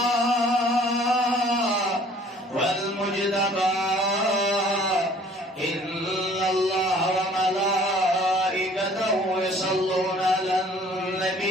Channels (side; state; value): both; normal; correlation 0.54